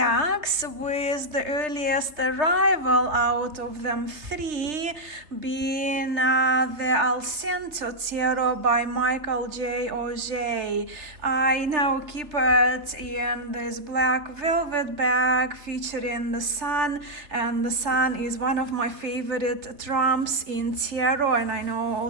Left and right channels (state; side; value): late; left; 3.2 ms